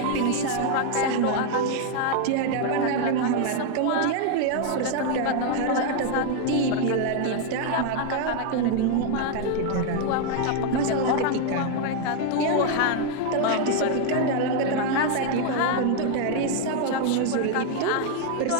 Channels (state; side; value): different; both; correlation 0.00